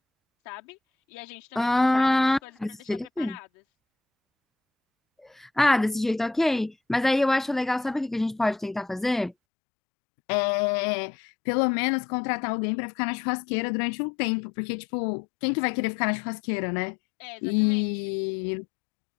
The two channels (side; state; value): right; drops out; at 9.3 s